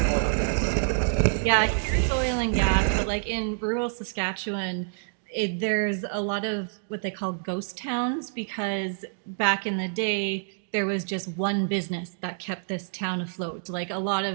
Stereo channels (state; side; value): silent; left; digital silence